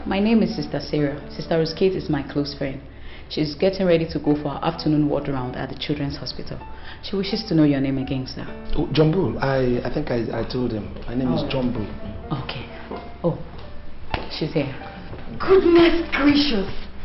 my name is Sister Sarah. Sister Rosegate is my close friend. She's getting ready to go for her afternoon walk around at the Children's Hospital. She wishes to know your name again, sir. Oh, Johnbull. I think I told him. My name is Johnbull. Okay. Oh, she's here. Goodness gracious!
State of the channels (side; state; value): both; identical; correlation 1.00